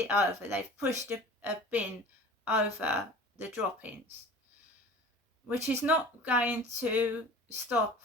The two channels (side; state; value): both; normal; correlation 0.42